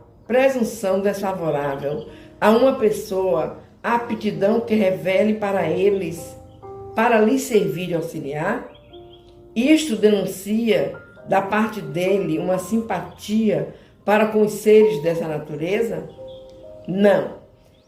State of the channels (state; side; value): identical; both; correlation 1.00